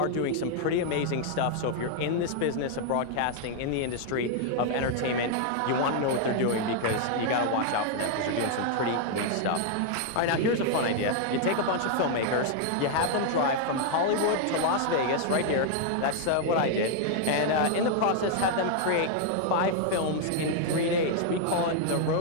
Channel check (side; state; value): both; different; correlation 0.00